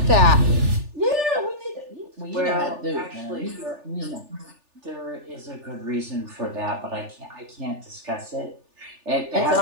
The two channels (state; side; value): late; left; 3.4 ms